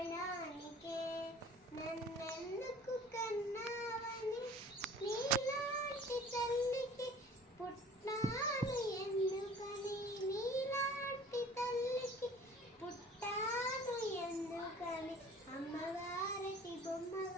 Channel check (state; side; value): normal; both; correlation 0.48